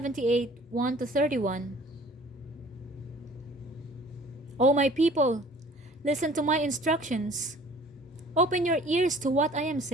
1-31. O my people, listen to my instructions. Open your ears to what I am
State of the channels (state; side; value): normal; both; correlation 0.51